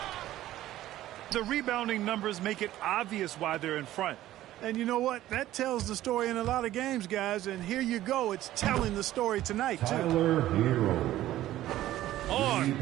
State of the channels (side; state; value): left; quieter; 14.3 dB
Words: The rebounding numbers make it obvious why they're in front. And you know what? That tells the story in a lot of games, guys. And here you go. It's telling the story tonight, too. Tyler Hero. On